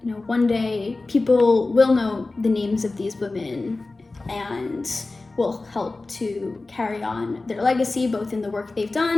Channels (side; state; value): right; quieter; 3.3 dB